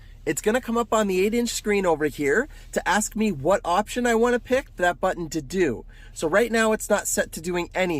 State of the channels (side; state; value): both; identical; correlation 1.00